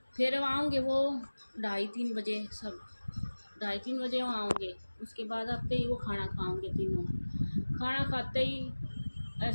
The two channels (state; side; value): inverted; both; correlation -1.00